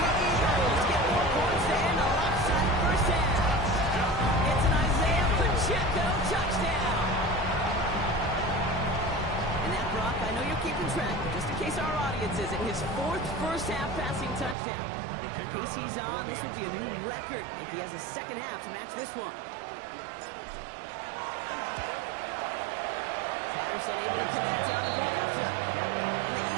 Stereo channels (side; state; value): left; drops out; at 14.6 s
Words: Eagles get more points to end a lopsided first half. It's an Isaiah Pacheco touchdown. And that, Brock, I know you're keeping track, but just in case our audience isn't, his 4th first-half passing touchdown. The pace he's on, this would be a new record if he has a second half to match this one. Patterson able to connect on the play after. And the